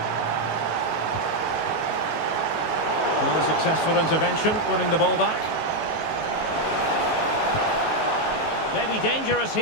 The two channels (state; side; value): late; right; 19 ms